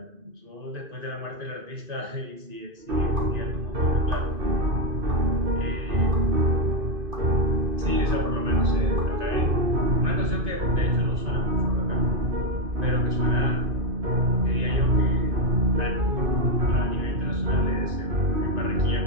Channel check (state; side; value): late; left; 2.5 ms